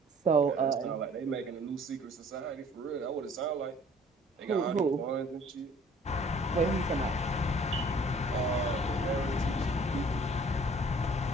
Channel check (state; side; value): normal; both; correlation 0.54